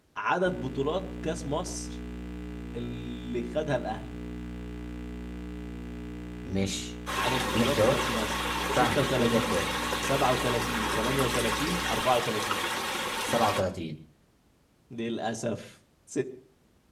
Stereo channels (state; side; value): identical; both; correlation 1.00